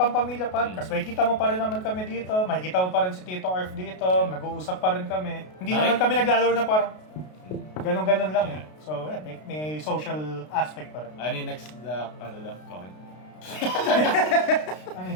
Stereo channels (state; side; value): late; right; 33 ms